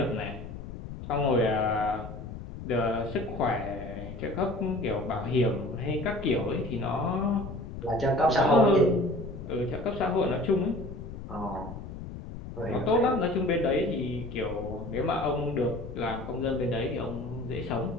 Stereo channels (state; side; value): noise; left; rumble, 10 dB below the sound